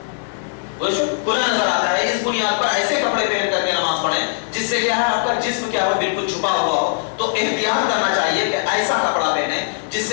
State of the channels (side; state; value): right; silent; digital silence